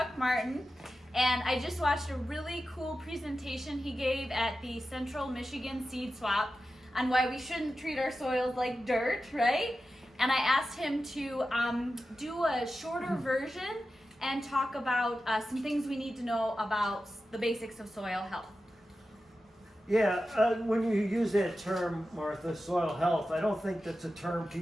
Martin, and I just watched a really cool presentation he gave at the Central Michigan Seed Swap on why we shouldn't treat our soils like dirt, right? And I asked him to do a shorter version and talk about some things we need to know about the basics of soil health. Yeah, when you use that term, Martha, soil health, I don't think that's a term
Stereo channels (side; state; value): both; normal; correlation 0.92